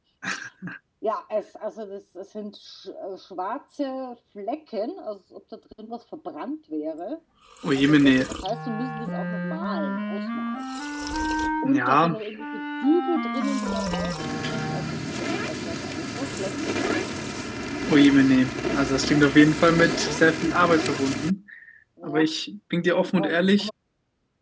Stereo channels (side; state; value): both; identical; correlation 1.00